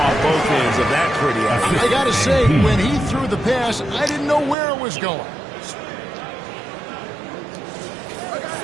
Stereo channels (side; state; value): left; drops out; at 4.5 s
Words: both ends of that pretty alley. I got to say, when he threw the pass, I didn't know where it was going.